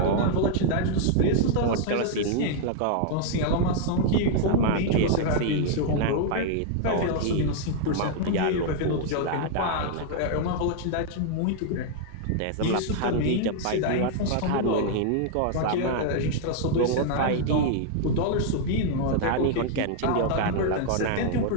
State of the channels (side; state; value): both; different; correlation 0.00